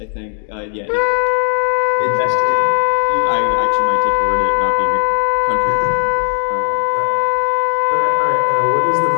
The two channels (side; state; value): right; silent; digital silence